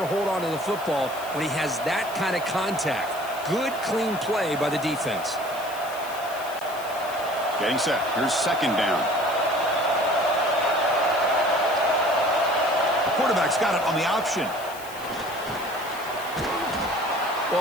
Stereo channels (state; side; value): noise; left; hiss, 16 dB below the sound